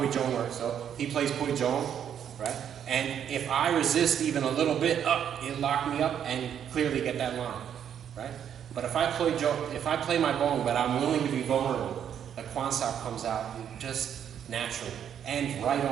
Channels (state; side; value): quieter; left; 9.0 dB